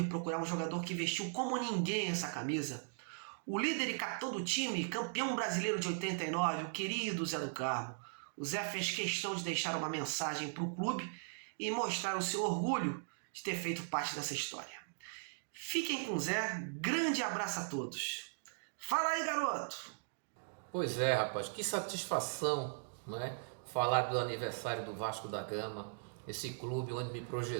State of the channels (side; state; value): left; silent; digital silence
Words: procurar um jogador que vestiu como ninguém essa camisa. O líder e capitão do time, campeão brasileiro de 89, o querido Zé do Carmo. O Zé fez questão de deixar uma mensagem para o clube e mostrar o seu orgulho de ter feito parte dessa história. Fiquem com o Zé, grande abraço a todos. Fala aí, garoto! Pois é, rapaz, que satisfação, não é? Falar do aniversário do Vasco da Gama, esse clube onde me